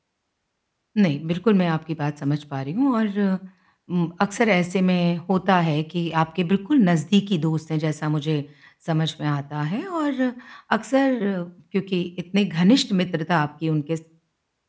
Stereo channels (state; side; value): identical; both; correlation 1.00